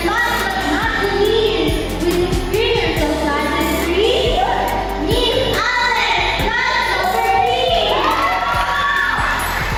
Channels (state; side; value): identical; both; correlation 1.00